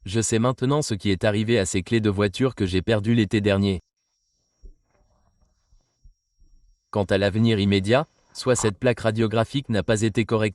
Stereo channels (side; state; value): both; identical; correlation 1.00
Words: je sais maintenant ce qui est arrivé à ces clés de voiture que j'ai perdues l'été dernier. Quant à l'avenir immédiat, soit cette plaque radiographique n'a pas été